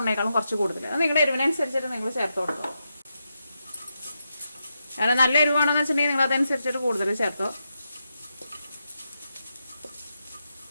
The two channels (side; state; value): both; inverted; correlation -0.85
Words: കുറച്ച് കൂടുതൽ. അത് നിങ്ങളുടെ എരിവിനനുസരിച്ചിട്ട് നിങ്ങൾ ചേർത്ത് കൊടുക്കുക. കാരണം നല്ല എരിവാണെന്ന് വെച്ചിട്ടുണ്ടെങ്കിൽ നിങ്ങൾ അതനുസരിച്ചിട്ട് കൂടുതൽ ചേർത്തോ.